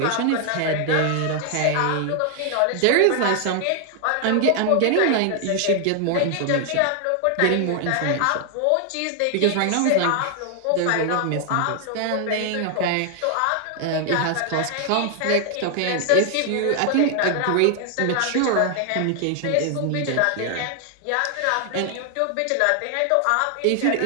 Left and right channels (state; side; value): different; both; correlation 0.00